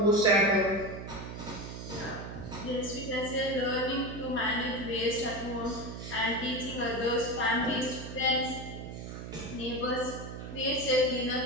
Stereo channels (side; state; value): right; noise; hum, 9 dB below the sound